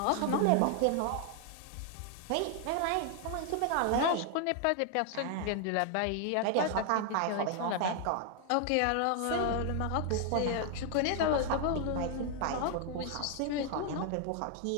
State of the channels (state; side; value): different; both; correlation 0.00